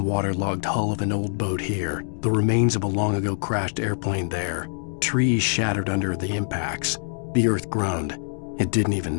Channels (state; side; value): silent; right; digital silence